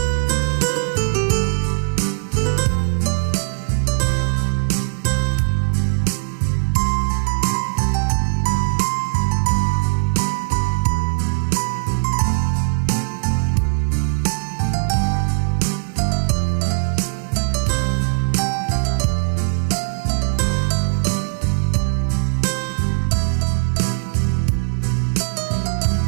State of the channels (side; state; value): left; silent; digital silence